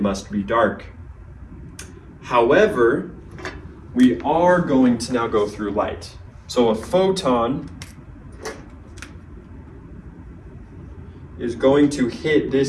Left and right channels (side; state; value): both; identical; correlation 1.00